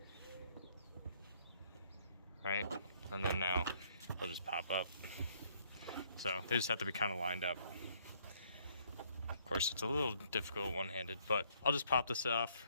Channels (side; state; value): both; inverted; correlation -0.65